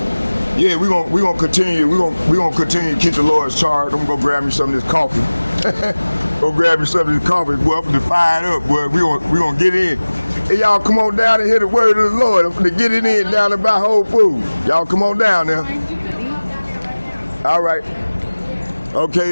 yeah, we're gonna continue. We're gonna continue to keep the Lord's charge. I'm gonna go grab me some of this coffee. Go grab me some of this coffee. Boy, I'm gonna fire it up. Boy, we gonna get in. Hey, y'all, come on down and hear the word of the Lord. I'm gonna get it in down there by Whole Foods. Y'all, come on down there. All right.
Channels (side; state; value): both; inverted; correlation -1.00